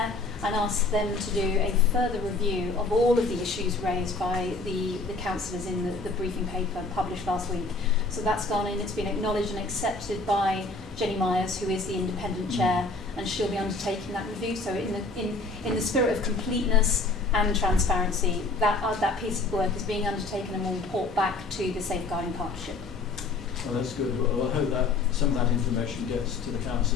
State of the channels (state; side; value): quieter; right; 3.6 dB